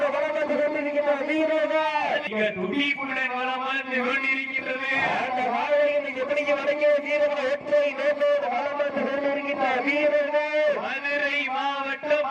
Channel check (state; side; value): identical; both; correlation 1.00